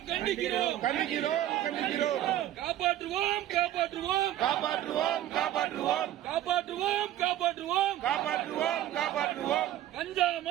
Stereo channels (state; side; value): quieter; left; 12.8 dB